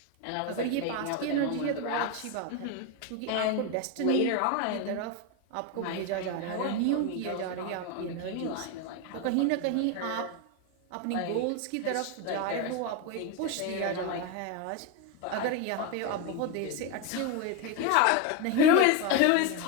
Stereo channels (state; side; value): different; both; correlation 0.02